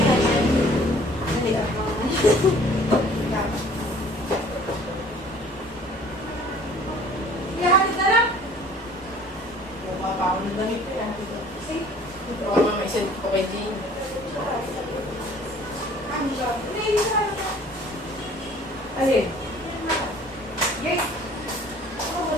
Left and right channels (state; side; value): normal; both; correlation 0.52